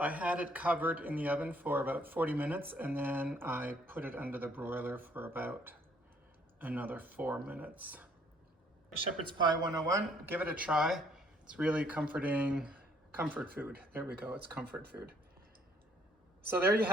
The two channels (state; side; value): normal; both; correlation 0.64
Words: had it covered in the oven for about 40 minutes and then I put it under the broiler for about another 4 minutes. Shepherd's Pie 101, give it a try. It's really comforting, comfort food. There we go, it's comfort food. So there you